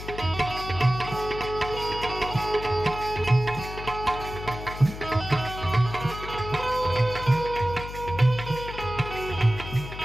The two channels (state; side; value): noise; left; hum, 10 dB below the sound